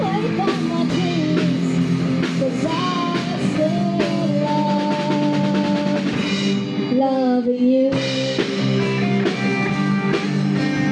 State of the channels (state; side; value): identical; both; correlation 1.00